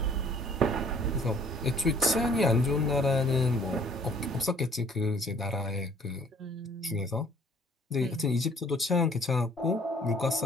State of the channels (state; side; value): normal; both; correlation 0.58